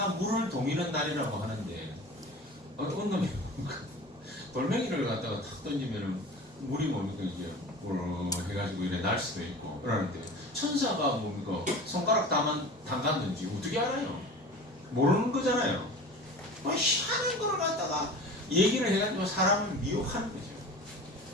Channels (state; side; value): normal; both; correlation 0.37